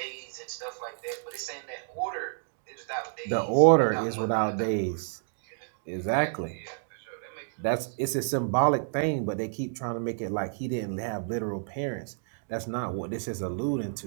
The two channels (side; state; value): left; silent; digital silence